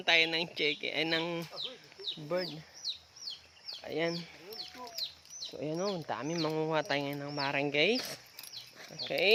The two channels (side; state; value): both; identical; correlation 1.00